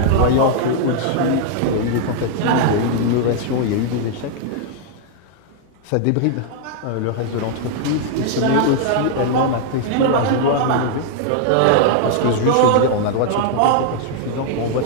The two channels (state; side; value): different; both; correlation -0.01